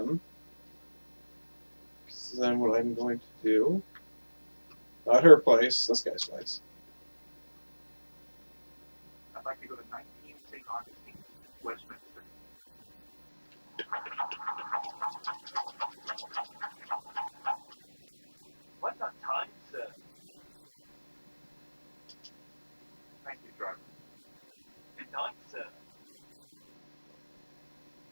This is then what I'm going to do. Not her place, this guy's place. I'd like to go to 19 St. Augustine's, Westminster. Right on time, sir. Thank you, driver. Good night, sir.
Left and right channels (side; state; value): both; inverted; correlation -1.00